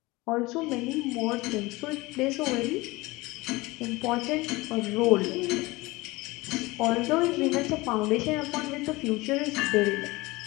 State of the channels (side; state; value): right; quieter; 21.7 dB